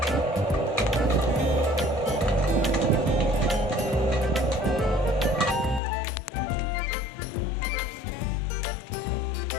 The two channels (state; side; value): drops out; right; at 5.8 s